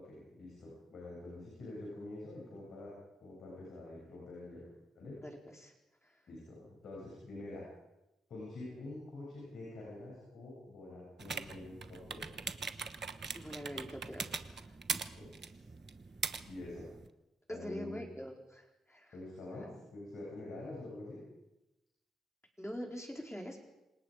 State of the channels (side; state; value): both; normal; correlation 0.77